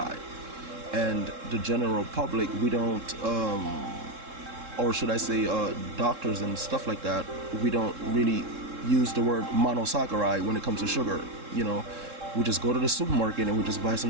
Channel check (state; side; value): late; left; 3.7 ms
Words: and the general public, we don't or should I say doctors and stuff like that, we don't really use the word monosaccharide when it comes to sugar. We just go to the supermarket and we just buy